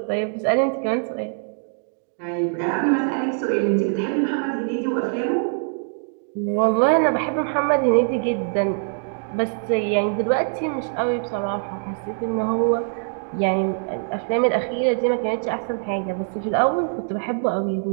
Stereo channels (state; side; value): silent; left; digital silence